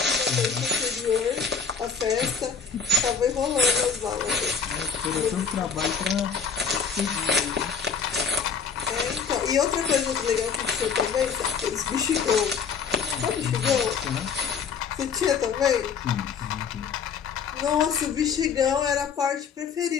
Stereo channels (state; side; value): quieter; right; 6.0 dB